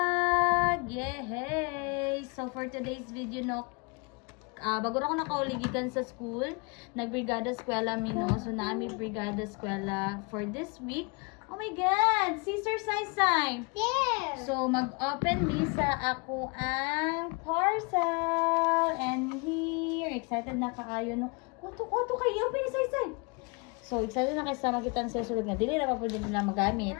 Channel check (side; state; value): right; quieter; 31.6 dB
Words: Yay! So for today's video, no, bago na ako nakauligikan sa school, nag-brigada eskwela mi, no? So naami brigada eskwela for this week. Oh my God! Sister Sai-Sai! There! So mag-open mi sa ako ang parcel. And here, excited na kaayo, no? Kuto kayo, open ni Sai-Sai! So, excited na kayo sa makita sa sulod nga. Dili na pa po din nila magamit.